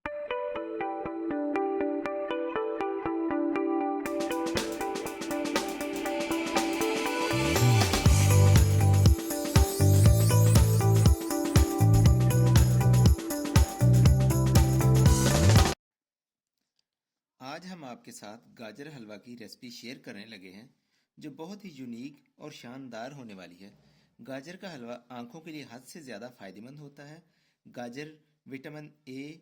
आज हम आपके साथ गाजर हलवा की रेसिपी शेयर करने लगे हैं जो बहुत ही यूनिक और शानदार होने वाली है। गाजर का हलवा आंखों के लिए हद से ज़्यादा फायदेमंद होता है। गाजर विटामिन ए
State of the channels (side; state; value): both; identical; correlation 1.00